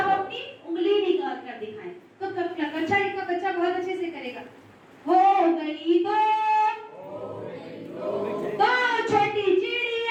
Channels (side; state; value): both; identical; correlation 1.00